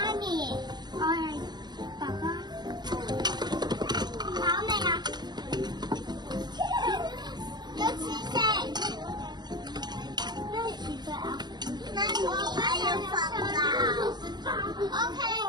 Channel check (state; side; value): late; left; 0.21 ms